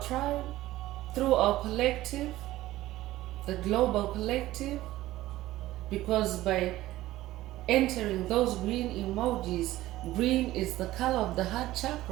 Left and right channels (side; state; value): left; quieter; 16.0 dB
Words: through our collective, the global collective, because by entering those green emojis, green is the color of the heart